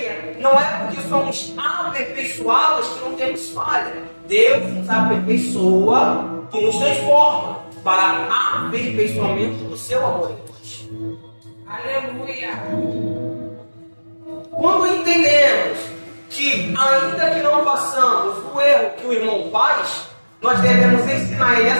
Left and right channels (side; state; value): both; inverted; correlation -1.00